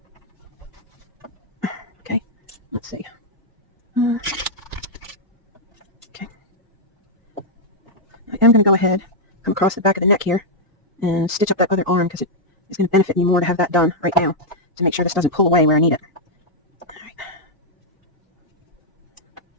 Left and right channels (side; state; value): both; normal; correlation -0.05